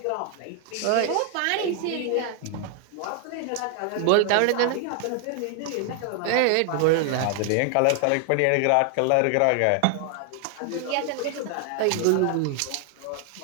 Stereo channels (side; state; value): both; different; correlation 0.00